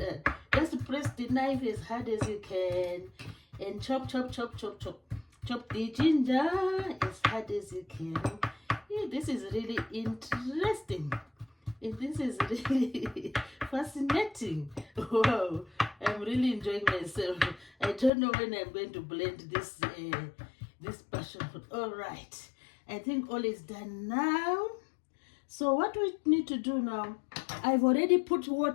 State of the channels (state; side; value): drops out; right; at 18.1 s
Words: Just press the knife as hard as you can and chop the ginger as hard as you can. Yeah, this is really interesting. This is really fascinating. Wow, I'm really enjoying myself. I don't know when I'm going to blend this passion fruit. All right, I think all is done now. So what we need to do now, I've already put